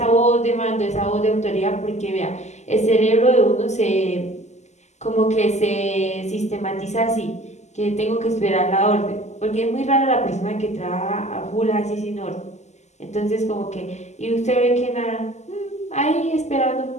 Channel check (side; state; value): right; late; 0.33 ms